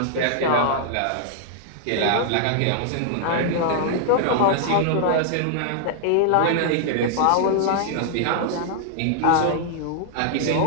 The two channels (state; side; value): different; both; correlation -0.01